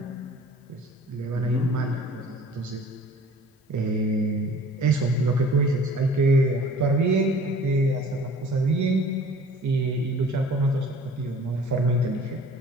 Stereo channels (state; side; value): normal; both; correlation 0.48